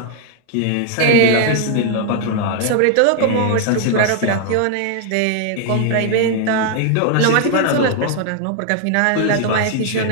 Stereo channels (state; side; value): different; both; correlation 0.00